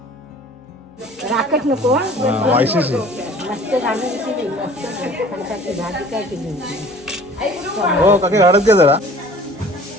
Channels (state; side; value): normal; both; correlation 0.48